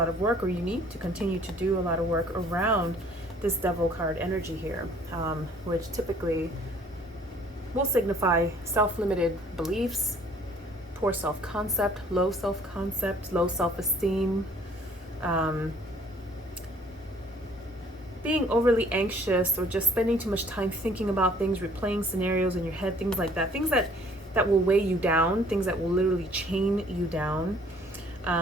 of work, or you need to continue to do a lot of work around this Devil card energy here, which typically will signify self-limited beliefs, poor self-concept, low self-concept, low self-esteem, being overly anxious, or just spending too much time thinking about things, replaying scenarios in your head, things like that, things that will weigh you down, things that will literally chain you down.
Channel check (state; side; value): normal; both; correlation 0.57